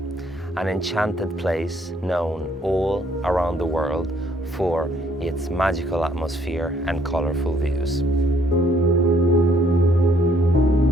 an enchanted place known all around the world for its magical atmosphere and colorful views.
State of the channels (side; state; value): both; normal; correlation 0.65